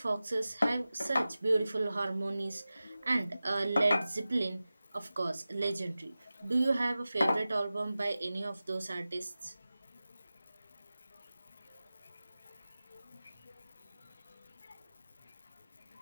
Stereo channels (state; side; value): inverted; both; correlation -0.96